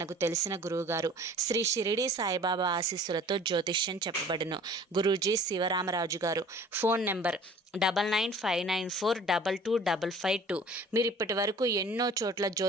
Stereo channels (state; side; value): normal; both; correlation 0.48